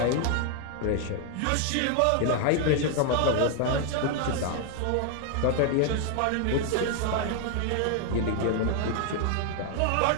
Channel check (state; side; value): different; both; correlation 0.00